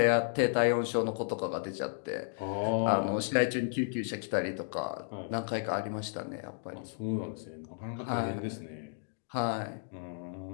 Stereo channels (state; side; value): silent; right; digital silence